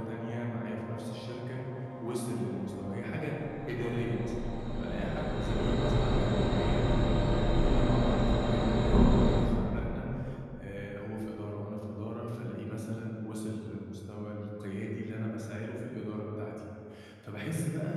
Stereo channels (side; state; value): both; identical; correlation 1.00